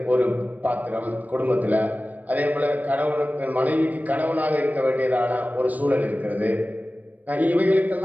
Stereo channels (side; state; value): left; late; 0.077 ms